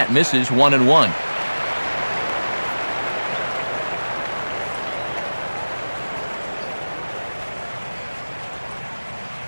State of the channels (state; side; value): inverted; both; correlation -1.00